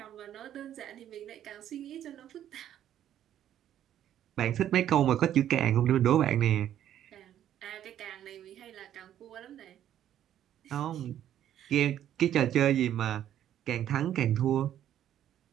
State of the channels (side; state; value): left; quieter; 11.0 dB